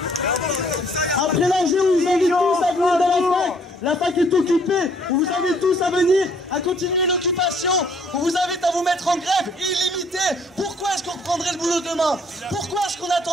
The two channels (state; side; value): normal; both; correlation 0.63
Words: Après l'enjeu, on vous invite tous à venir dans la fac. La fac est occupée. On vous invite tous à venir, à continuer l'occupation. On vous invite à vous mettre en grève illimitée. Pourquoi est-ce qu'on reprendrait le boulot demain? Pourquoi est-ce qu'on